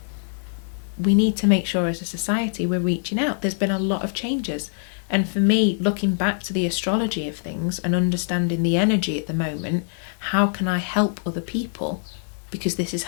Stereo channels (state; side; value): silent; right; digital silence